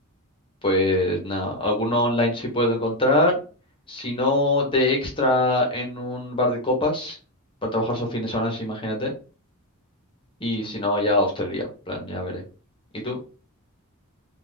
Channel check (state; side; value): normal; both; correlation 0.04